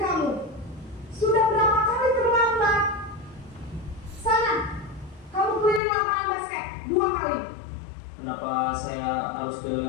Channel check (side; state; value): right; drops out; at 5.8 s